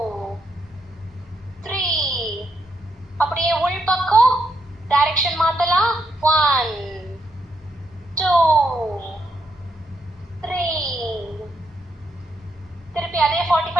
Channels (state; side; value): normal; both; correlation 0.79